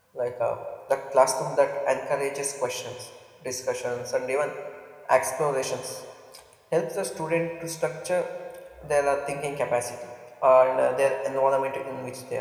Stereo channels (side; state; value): both; identical; correlation 1.00